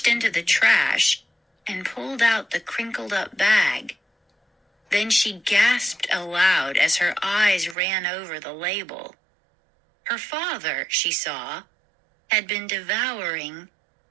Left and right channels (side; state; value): left; drops out; at 7.8 s